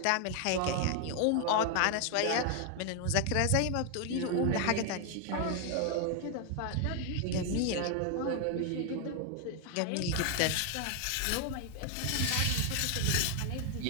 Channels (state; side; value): different; both; correlation 0.00